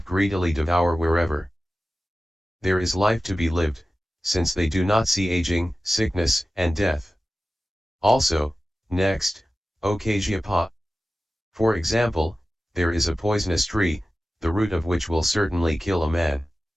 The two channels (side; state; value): both; normal; correlation 0.95